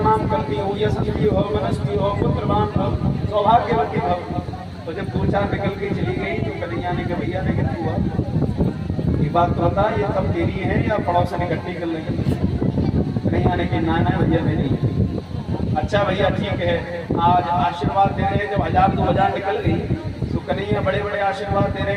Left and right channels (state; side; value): identical; both; correlation 1.00